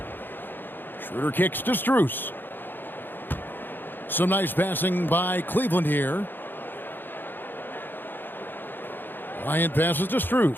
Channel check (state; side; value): late; right; 0.095 ms